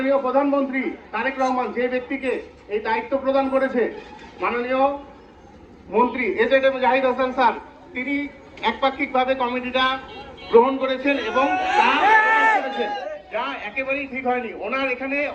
প্রধানমন্ত্রী তারেক রহমান যে ব্যক্তিকে এই দায়িত্ব প্রদান করেছে, মাননীয় মন্ত্রী এজেড জাহিদ হাসান স্যার, তিনি একপাক্ষিকভাবে কমিটিটা গ্রহণ করেছেন এবং তা করেছেন, যা একেবারেই ঠিক হয়নি। ওনার এখানে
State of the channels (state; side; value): identical; both; correlation 1.00